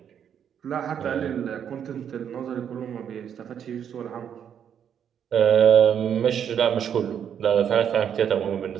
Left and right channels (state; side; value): quieter; left; 8.6 dB